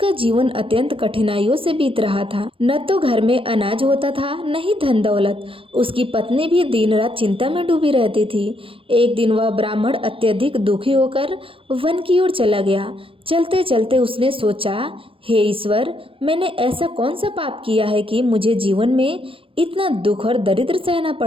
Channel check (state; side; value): late; left; 0.26 ms